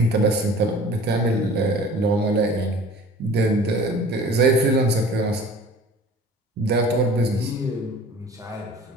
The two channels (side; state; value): both; normal; correlation 0.45